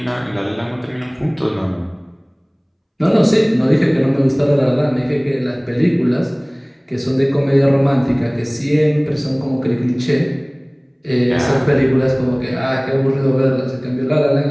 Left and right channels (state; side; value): identical; both; correlation 1.00